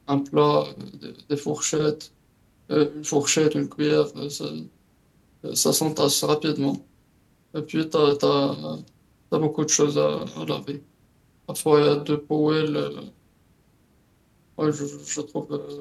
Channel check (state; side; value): identical; both; correlation 1.00